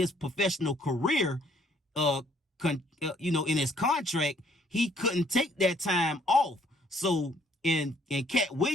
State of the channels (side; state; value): both; normal; correlation 0.64